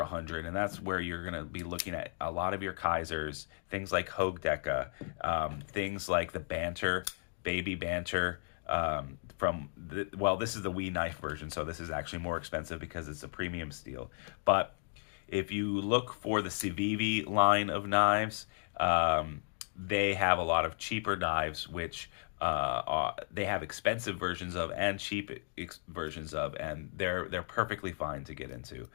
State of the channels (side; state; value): right; silent; digital silence